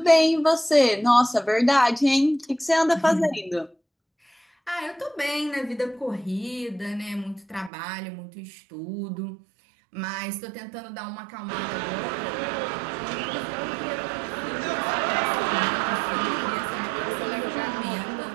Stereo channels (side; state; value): left; drops out; at 7.7 s